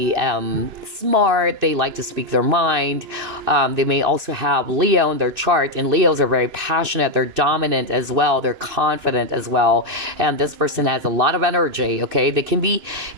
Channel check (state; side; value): late; left; 2.9 ms